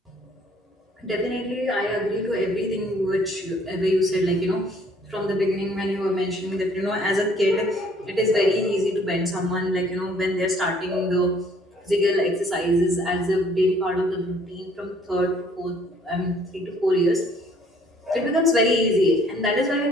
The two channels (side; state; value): both; normal; correlation 0.60